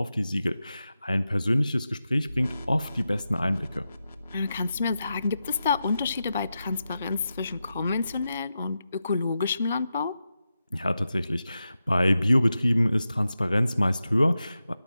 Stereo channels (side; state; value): both; inverted; correlation -0.90